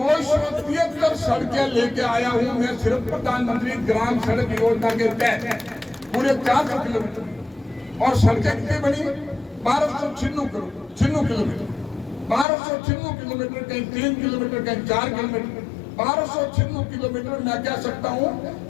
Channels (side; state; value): right; drops out; at 12.5 s